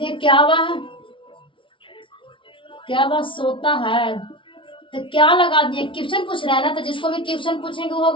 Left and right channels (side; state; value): right; late; 0.25 ms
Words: क्या वह सोता है, तो क्या लगा दिए? क्वेश्चन पूछ रहा है ना, तो जिसको भी क्वेश्चन पूछेंगे वो